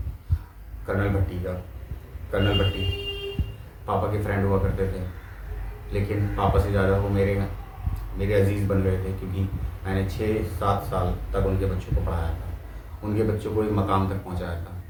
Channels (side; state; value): both; identical; correlation 1.00